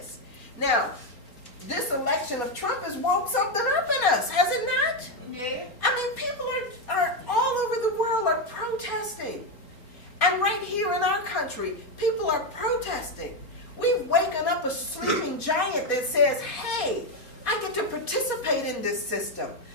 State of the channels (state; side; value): late; right; 4.2 ms